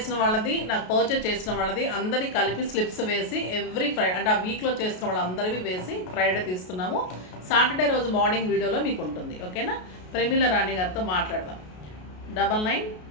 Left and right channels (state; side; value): late; right; 33 ms